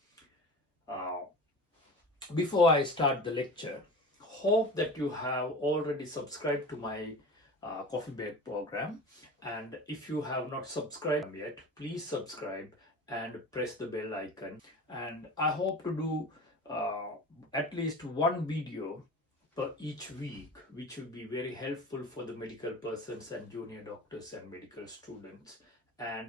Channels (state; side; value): normal; both; correlation 0.34